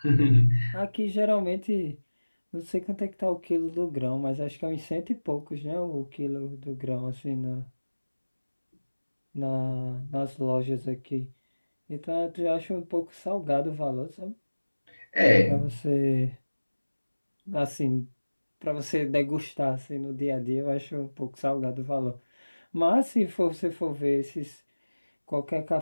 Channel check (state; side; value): inverted; both; correlation -1.00